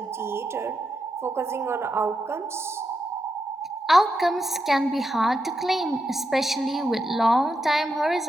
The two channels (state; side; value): normal; both; correlation 0.85